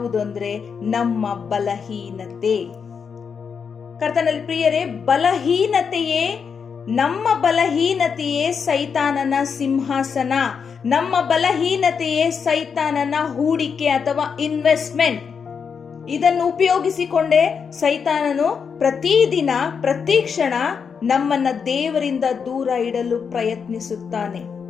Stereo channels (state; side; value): quieter; right; 6.3 dB